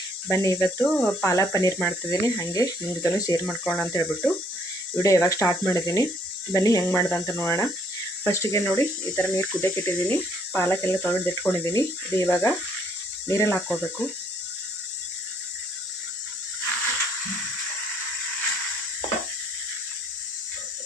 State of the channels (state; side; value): normal; both; correlation 0.66